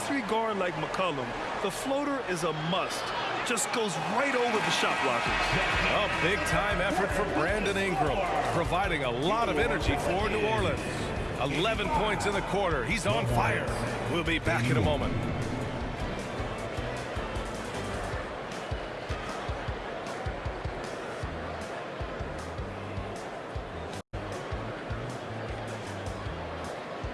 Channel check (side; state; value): both; identical; correlation 1.00